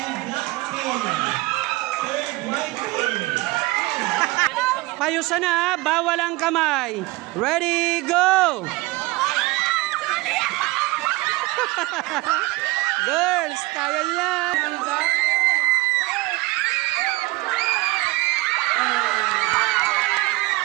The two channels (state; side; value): quieter; left; 21.9 dB